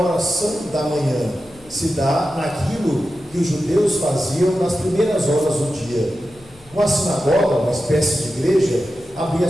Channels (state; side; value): noise; left; hum, 26 dB below the sound